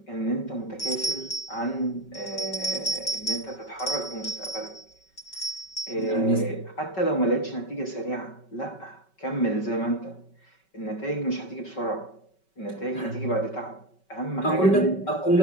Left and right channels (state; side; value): late; right; 5.3 ms